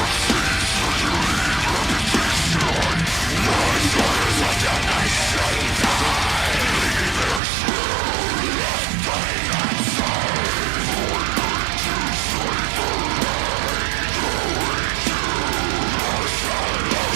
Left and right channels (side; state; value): left; drops out; at 7.4 s